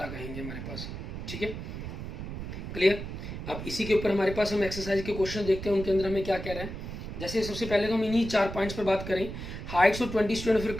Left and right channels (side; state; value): right; noise; rumble, 8 dB below the sound